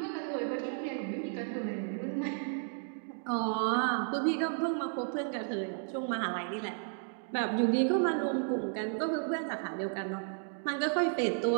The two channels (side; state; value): left; silent; 56 dB below the other